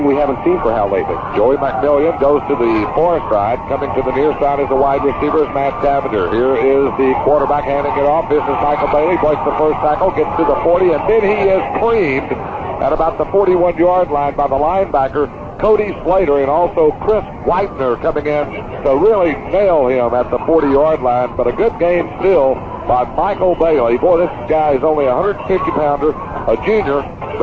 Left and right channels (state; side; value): identical; both; correlation 1.00